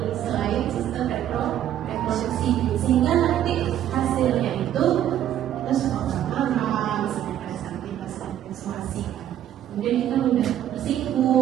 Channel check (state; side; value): quieter; left; 11.3 dB